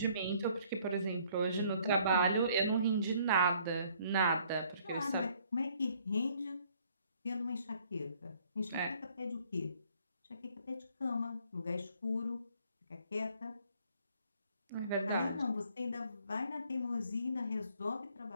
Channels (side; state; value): both; inverted; correlation -0.62